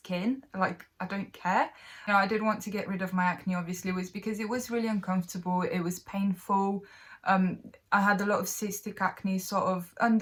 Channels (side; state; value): both; identical; correlation 1.00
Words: Like, I don't care. You know, I did want to get rid of my acne, obviously, was because it was really uncomfortable. It was painful. I had a lot of cystic acne sort of